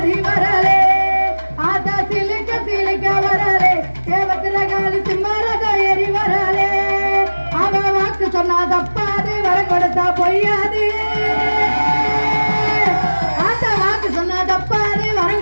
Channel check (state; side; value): inverted; both; correlation -1.00